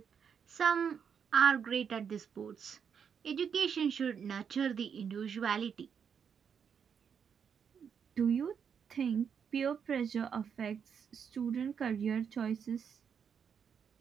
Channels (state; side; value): quieter; left; 7.2 dB